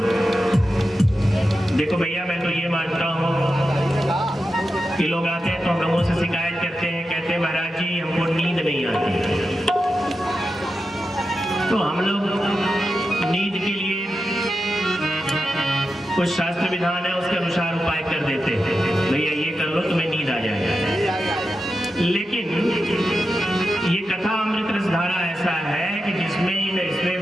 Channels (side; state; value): both; normal; correlation 0.90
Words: देखो भैया, मैं तो ये मानता हूँ कि लोग आते हैं तो हम लोगों से शिकायत करते हैं, कहते हैं महाराज जी हमको नींद नहीं आती। तो हम लोग नींद के लिए कुछ शास्त्र विधान है, उसके अनुसार उपाय कर देते हैं, भैया ये कर लो तुम्हें नींद आ जाएगा। लेकिन ये कथा अमृत रस धारा ऐसा है कि इसमें